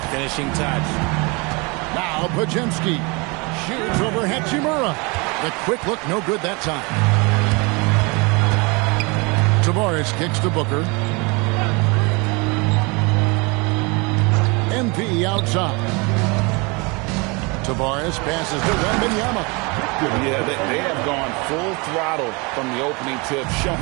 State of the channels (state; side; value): quieter; left; 28.6 dB